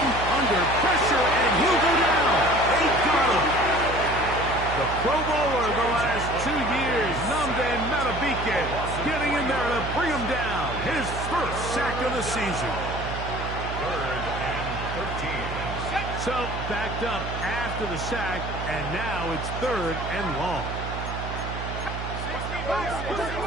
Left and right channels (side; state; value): right; noise; hum, 6 dB below the sound